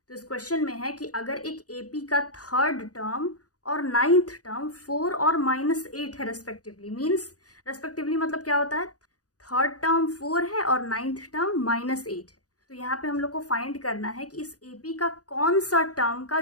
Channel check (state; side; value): late; right; 0.67 ms